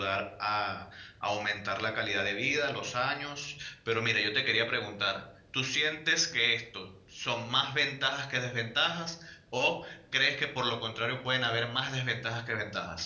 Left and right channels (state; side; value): identical; both; correlation 1.00